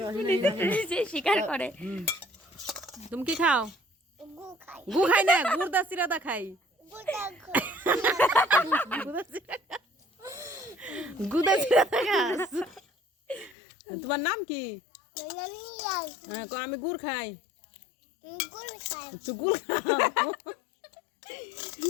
স্বীকার করে। তুমি কি খাও? গু খাই না, গুড় দা সিরা দা খাই। গুদা সিরা দা খাস। তোমার নাম কি? আমি গুড় খাই। তুই গুড় খাও।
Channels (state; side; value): drops out; right; at 13.6 s